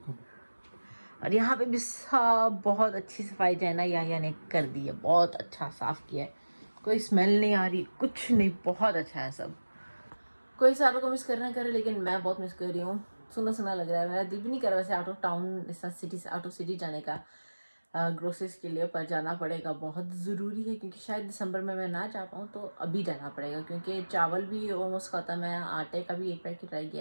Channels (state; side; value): inverted; both; correlation -1.00